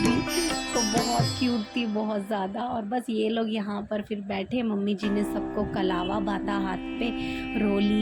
तो बहुत क्यूट थी, बहुत ज़्यादा। और बस ये लोग यहाँ पर फिर बैठे, मम्मी जी ने सबको कलावा बांधा हाथ पे,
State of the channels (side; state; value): both; identical; correlation 1.00